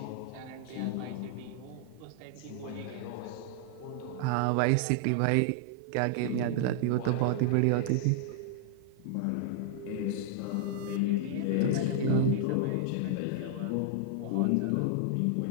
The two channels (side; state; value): both; different; correlation -0.01